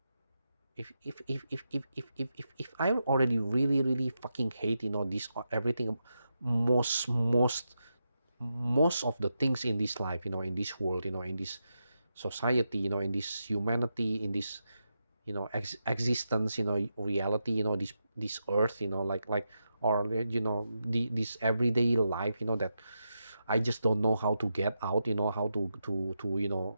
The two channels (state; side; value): inverted; both; correlation -0.87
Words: if I already really really fucking hate, this everything, most of the things in this life, in this world, in this society, in this humanity, in this, existence, reality, this earth, like or this everyday life, that I just don't know how to get out, how to